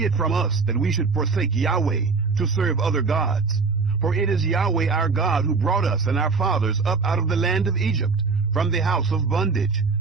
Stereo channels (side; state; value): left; quieter; 4.6 dB